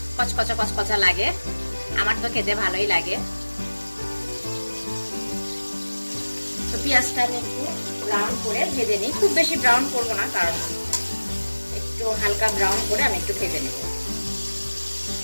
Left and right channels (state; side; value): inverted; both; correlation -1.00